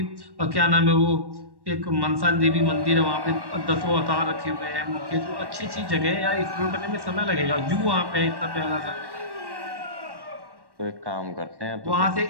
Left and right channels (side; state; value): left; late; 1.1 ms